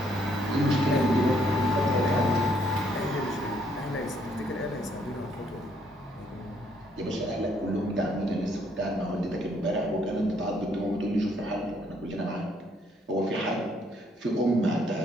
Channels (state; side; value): normal; both; correlation 0.69